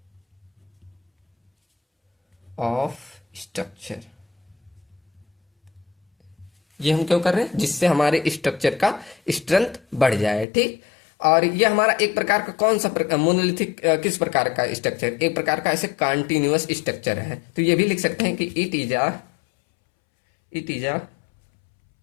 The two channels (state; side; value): drops out; right; at 10.5 s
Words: of structure. ये हम क्यों कर रहे हैं? जिससे हमारे स्ट्रक्चर का स्ट्रेंथ बढ़ जाए। ठीक, और ये हमारा एक प्रकार का कौन सा मोनोलिथिक किस प्रकार का स्ट्रक्चर? एक प्रकार का ऐसे कंटिन्यूअस स्ट्रक्चर है। तो ये भी लिख सकते हैं कि it is a